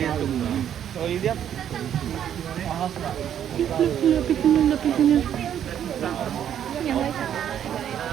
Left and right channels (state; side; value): quieter; left; 9.7 dB